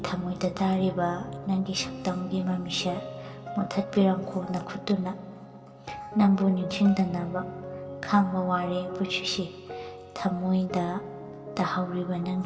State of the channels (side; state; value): both; identical; correlation 1.00